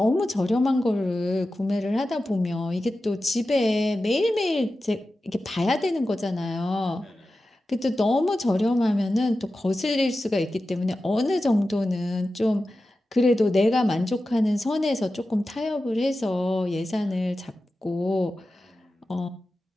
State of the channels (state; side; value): normal; both; correlation 0.93